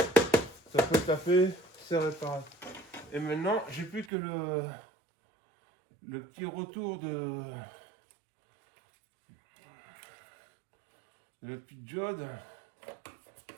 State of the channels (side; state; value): left; drops out; at 4.1 s